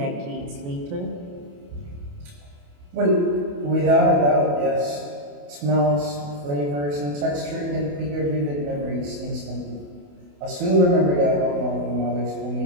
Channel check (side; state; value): left; late; 28 ms